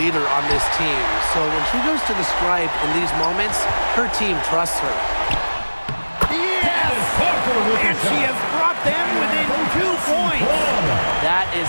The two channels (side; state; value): both; inverted; correlation -1.00